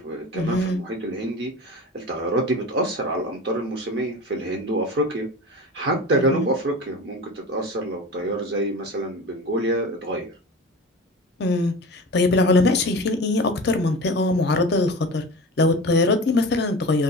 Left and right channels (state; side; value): normal; both; correlation 0.32